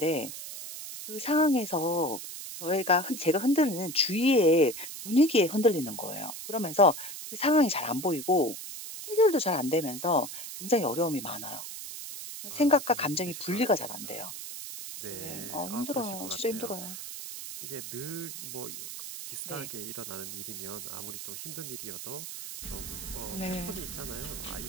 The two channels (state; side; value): noise; right; hiss, 9 dB below the sound